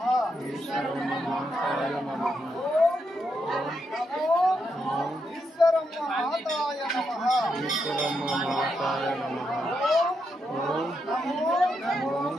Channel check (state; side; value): normal; both; correlation 0.82